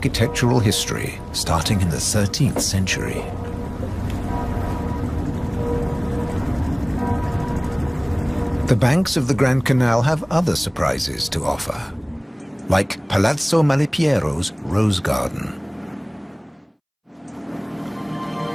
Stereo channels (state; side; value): identical; both; correlation 1.00